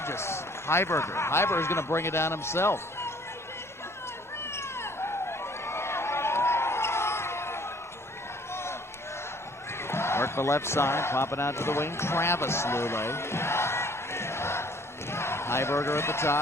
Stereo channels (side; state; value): both; normal; correlation 0.57